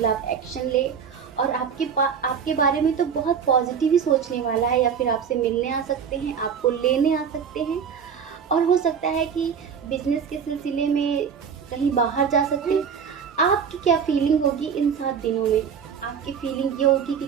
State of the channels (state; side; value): quieter; left; 7.0 dB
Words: एक्शन ले, और आपके बारे में तो बहुत पॉजिटिव ही सोचने वाला है, या फिर आपसे मिलने आ सकते हैं, आपको लेने आ सकते हैं। और हो सकता है कि बिजनेस के सिलसिले में कहीं बाहर जा सकते हैं। आपकी क्या फीलिंग होगी इन 7 दिनों में? आपकी फीलिंग ये होगी कि